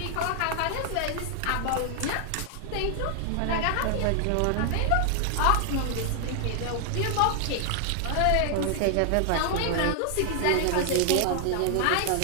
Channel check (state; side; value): different; both; correlation 0.00